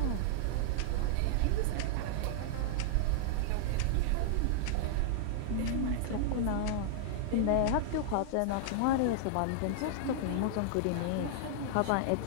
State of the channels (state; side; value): different; both; correlation -0.01